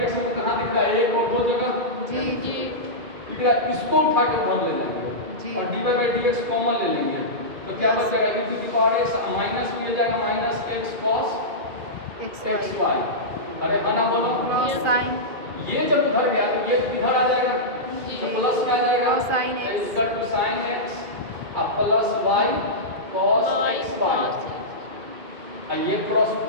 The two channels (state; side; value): late; left; 2.5 ms